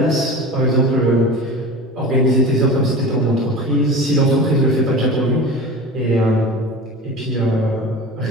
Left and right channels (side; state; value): both; normal; correlation 0.33